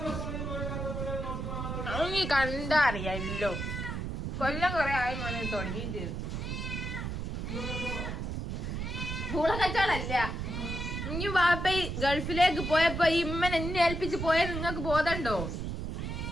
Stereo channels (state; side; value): noise; right; rumble, 4 dB below the sound